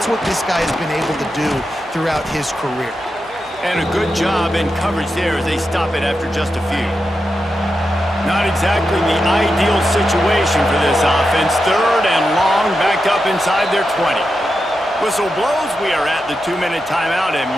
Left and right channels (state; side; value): normal; both; correlation 0.88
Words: what this guy has been able to do throughout his career. And a good job in coverage there as they stop it after just a few. Not exactly the ideal situation for this offense. 3rd and long, backed up inside their 20. Whistle blows, we are at the 2-minute timeout, and